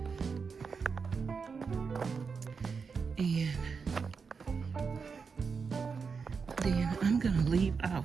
And then I'm gonna leave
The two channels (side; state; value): left; quieter; 5.4 dB